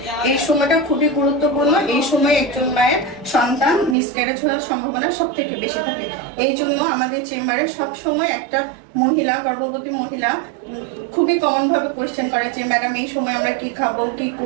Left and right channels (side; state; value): left; drops out; at 4.0 s